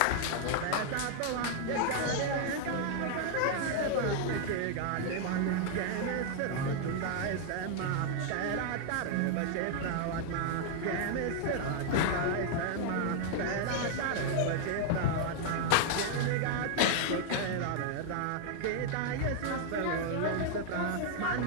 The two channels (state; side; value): different; both; correlation 0.00